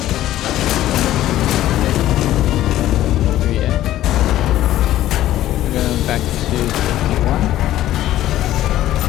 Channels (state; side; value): quieter; right; 13.8 dB